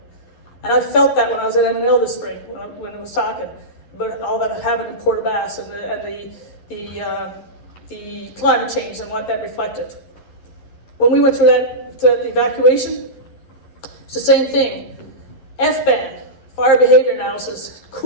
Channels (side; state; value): right; late; 11 ms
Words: And I felt that when I was at M&L this spring, when I was talking about all that happened in Port aux Basques and the climate change and what that reflected. When we went through the evacuation, it's the same thing. FBAN, fire behavior analysis,